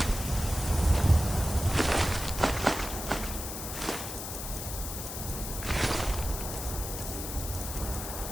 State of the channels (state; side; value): noise; left; hiss, 7 dB below the sound